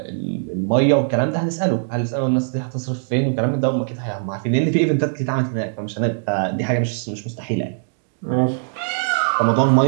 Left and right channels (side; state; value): left; silent; digital silence